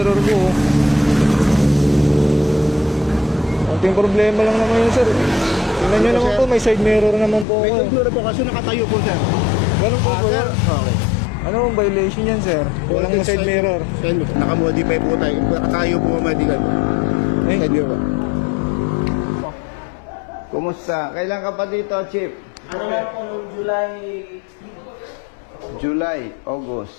ko. Konting problema lang naman yun, sir. Tingnan nyo naman po, may side mirror naman po May ako. siguro po kasi nakatayo po, sir. Ganun po po Sir, yan. okay. Ano ang violation yan, sir? Walang side mirror. Nakamodify po tayo. Nakatayo po medical po. Eh, Side mirror. Kumusta? Kailan ka pa dito, Chief? Ano lang po nung July, August.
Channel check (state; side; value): drops out; right; at 7.5 s